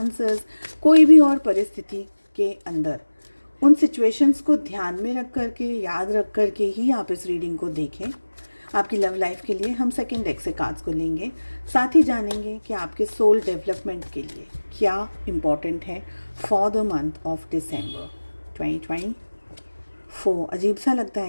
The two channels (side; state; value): both; inverted; correlation -1.00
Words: कोई भी और परिस्थिति के अंदर, उन सिचुएशंस को ध्यान में रख करके, याद रख करके ही आप इस रीडिंग को देखें। आपकी लव लाइफ के लिए हम सेकंड डेक से कार्ड्स को लेंगे, साथ ही जानेंगे कि आपके सोल डेवलपमेंट के लिए क्या इम्पॉर्टेंट है for the month of December 2024। अजीब सा लगता